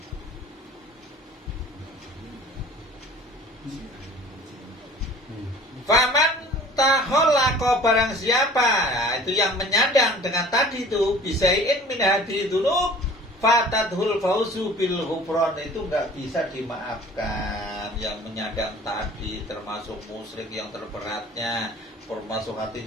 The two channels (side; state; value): both; normal; correlation 0.47